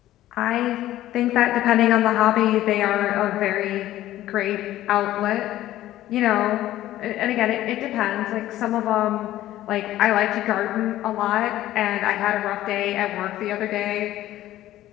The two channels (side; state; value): right; quieter; 14.2 dB